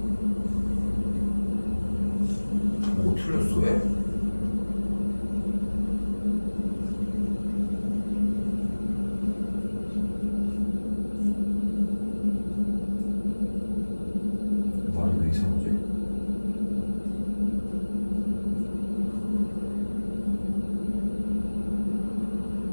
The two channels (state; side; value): inverted; both; correlation -1.00